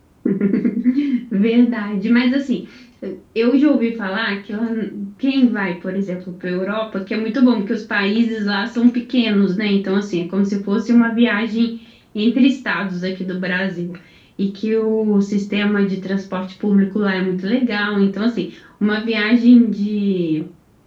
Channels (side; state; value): both; identical; correlation 1.00